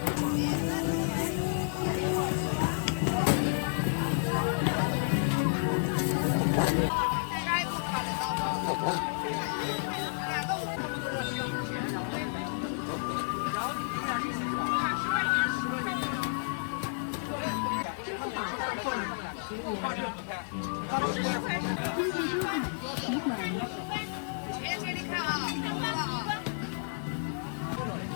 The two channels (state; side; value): silent; right; digital silence